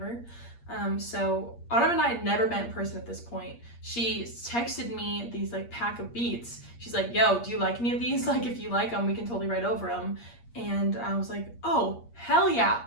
So Autumn and I had never met in person at this point. She texted me these like pack of beats. She's like, yo, do you like any of these? Like, if you like them, we can totally write over them. And I was like, oh, hell yeah.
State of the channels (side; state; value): right; late; 8.5 ms